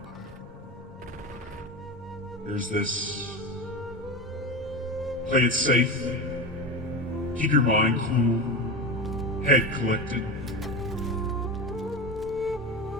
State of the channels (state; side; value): normal; both; correlation 0.23